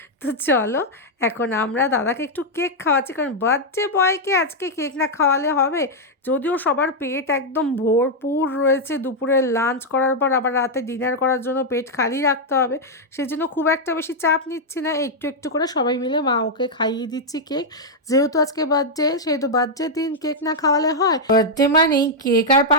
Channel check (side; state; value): both; normal; correlation -0.02